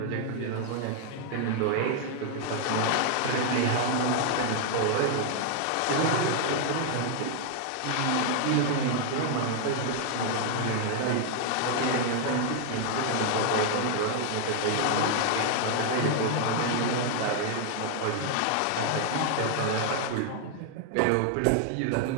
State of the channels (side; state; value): both; different; correlation 0.00